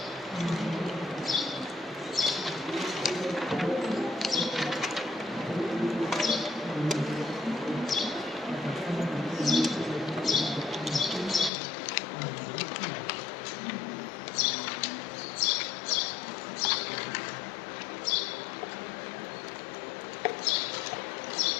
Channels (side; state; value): right; drops out; at 11.5 s